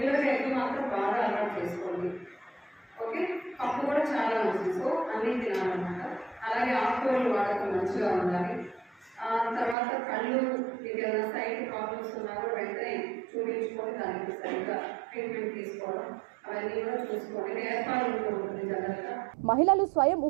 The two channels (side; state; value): left; drops out; at 9.8 s